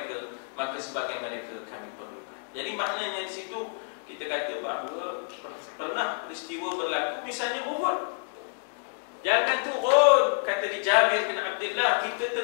maka sebahagian mereka kami perlukan. Jadi maknanya di situ kita kata bahawa pernah peristiwa berlaku, misalnya Uhud. Jangan turun, kata di Jabir bin Abdullah, kita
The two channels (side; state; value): right; silent; 56 dB below the other